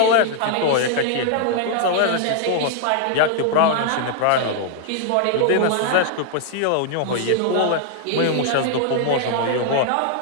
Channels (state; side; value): different; both; correlation 0.00